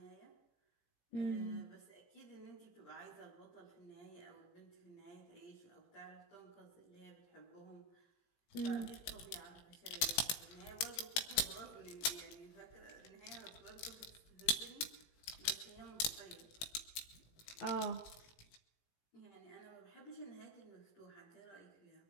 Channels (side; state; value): right; late; 18 ms